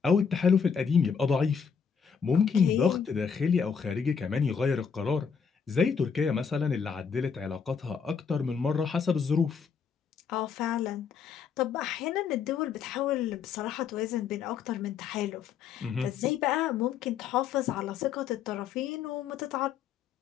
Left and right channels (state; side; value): quieter; right; 6.6 dB